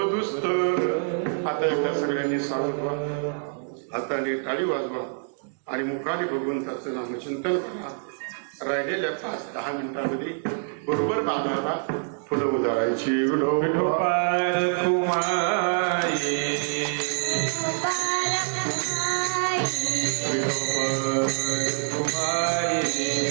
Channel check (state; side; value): silent; left; digital silence